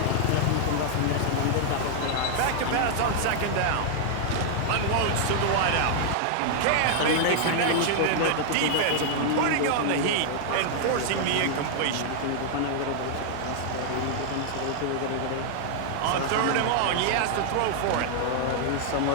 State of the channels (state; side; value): different; both; correlation 0.00